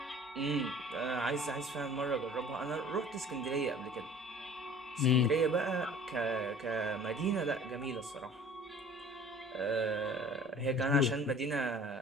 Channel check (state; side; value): normal; both; correlation 0.48